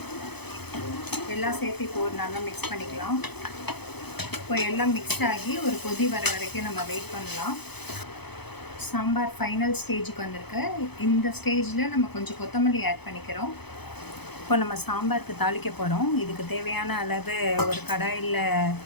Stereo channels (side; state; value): right; late; 0.98 ms